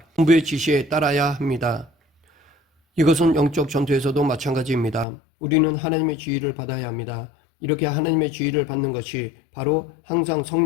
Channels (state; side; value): drops out; right; at 5.1 s